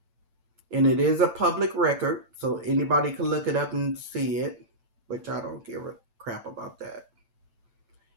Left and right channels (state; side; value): late; left; 9.0 ms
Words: And it is a public record, so anybody can look it up and see it, which I don't give a crap about that.